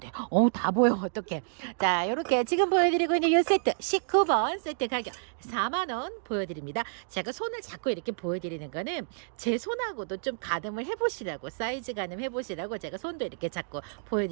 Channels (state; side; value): silent; left; digital silence